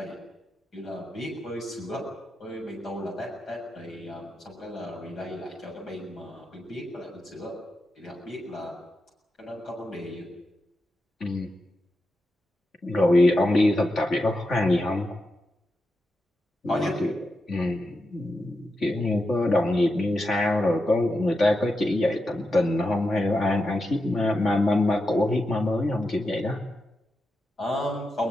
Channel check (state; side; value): normal; both; correlation 0.88